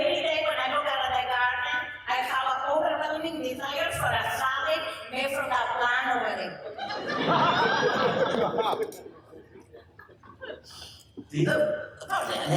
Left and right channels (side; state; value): both; identical; correlation 1.00